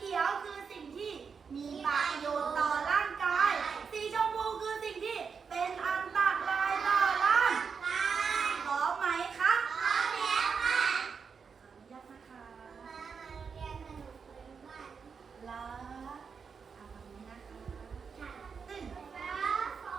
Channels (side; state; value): left; quieter; 5.9 dB